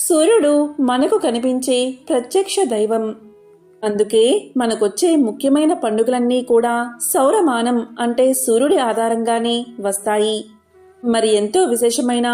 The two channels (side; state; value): both; identical; correlation 1.00